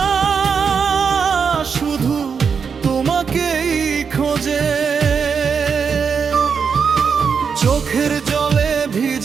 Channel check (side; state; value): left; quieter; 6.1 dB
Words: শুধু তোমাকেই খোঁজে। চোখের জলে